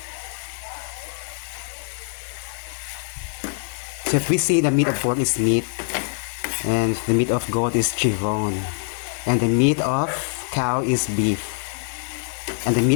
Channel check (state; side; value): silent; right; 59 dB below the other